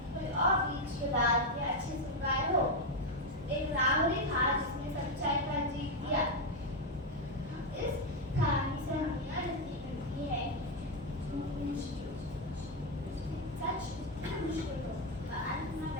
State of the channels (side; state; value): both; normal; correlation 0.05